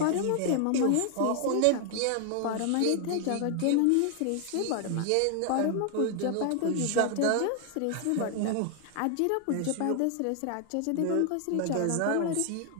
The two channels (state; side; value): different; both; correlation 0.00